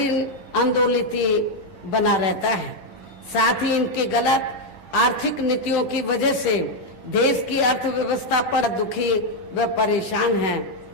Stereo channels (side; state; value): right; late; 10 ms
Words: आंदोलित बना रहता है। साथ ही इनकी गलत आर्थिक नीतियों की वजह से देश की अर्थव्यवस्था पर दुखी व परेशान हैं।